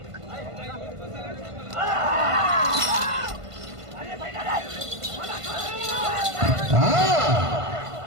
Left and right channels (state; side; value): late; left; 1.5 ms